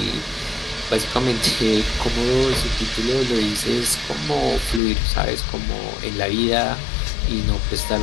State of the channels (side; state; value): right; drops out; at 4.8 s